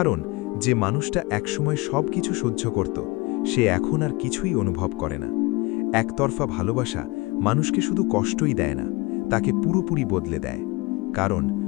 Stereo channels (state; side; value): quieter; right; 24.2 dB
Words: যে মানুষটা একসময় সব কিছু সহ্য করত, সে এখন আর কিছুই অনুভব করে না। একতরফা ভালোবাসা মানুষকে শুধু কষ্টই দেয় না, তাকে পুরোপুরি বদলে দেয়। কারণ